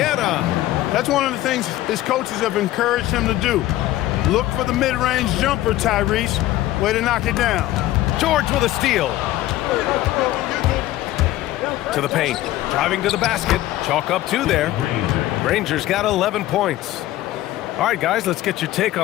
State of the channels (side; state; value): right; quieter; 15.2 dB